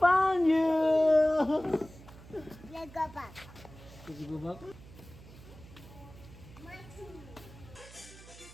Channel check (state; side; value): noise; right; hum, 19 dB below the sound